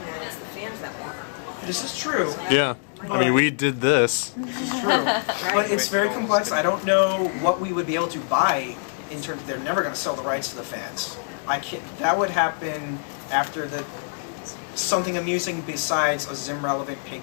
that. It's the fans that want it. This is true. Yeah. I mean, we did this. It's true, but it's very complex. I don't know what we would be able to buy in terms. They're never going to sell the rights to the fans. I can't. That would happen after something amusing besides a Zim relevant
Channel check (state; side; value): silent; right; digital silence